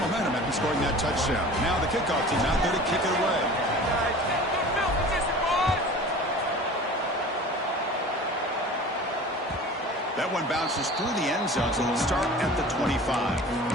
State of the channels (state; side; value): normal; both; correlation 0.40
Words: momentum after scoring that touchdown. Now the kickoff team out there to kick it away. That one bounces through the end zone, so they'll start at the 25.